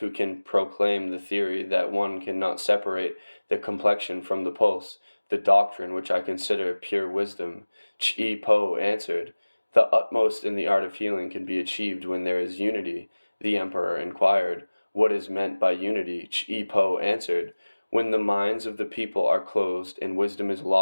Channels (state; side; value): inverted; both; correlation -1.00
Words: can proclaim the theory that one cannot separate the complexion from the pulse, the doctrine which I consider pure wisdom. Chi Po answered, the utmost in the art of healing can be achieved when there is unity. The emperor inquired, what is meant by unity? Chi Po answered, when the minds of the people are closed and wisdom is